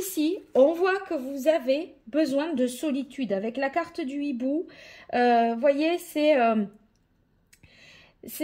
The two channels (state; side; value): identical; both; correlation 1.00